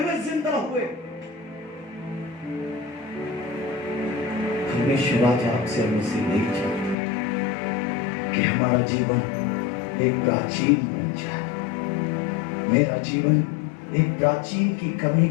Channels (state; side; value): drops out; right; at 7.0 s